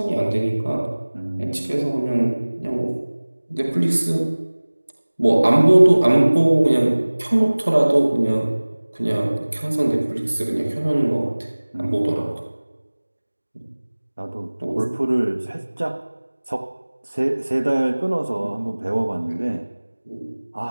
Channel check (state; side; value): inverted; both; correlation -1.00